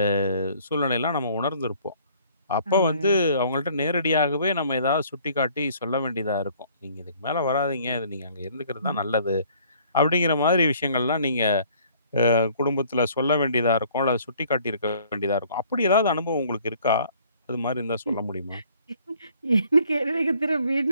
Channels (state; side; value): inverted; both; correlation -0.58